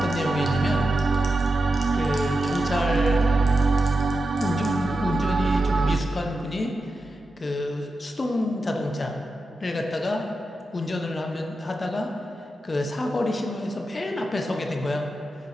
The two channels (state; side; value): normal; both; correlation 0.89